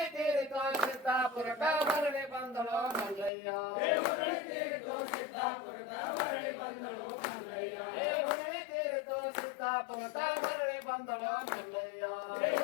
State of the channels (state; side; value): drops out; right; at 3.3 s